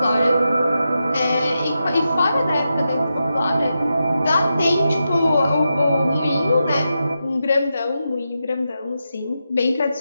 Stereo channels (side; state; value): both; inverted; correlation -0.88